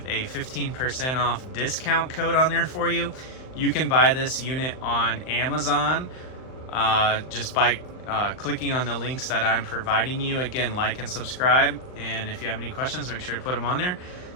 a 15% off discount code on there for you. You can buy this unit on Amazon just by clicking on the links that I'm providing you. Again, like and subscribe. And if you have any questions, make sure to put them on there.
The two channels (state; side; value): late; right; 39 ms